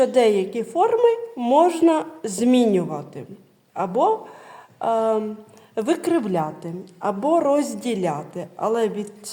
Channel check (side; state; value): both; identical; correlation 1.00